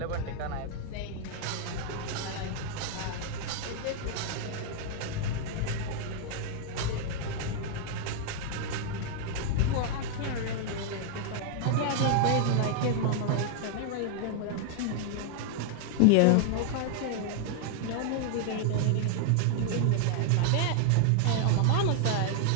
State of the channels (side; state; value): both; different; correlation 0.00